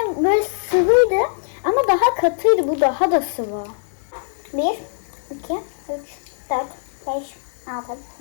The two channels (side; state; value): right; silent; 63 dB below the other